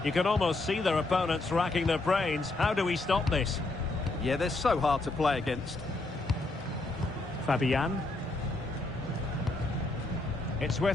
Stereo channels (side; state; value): right; quieter; 3.1 dB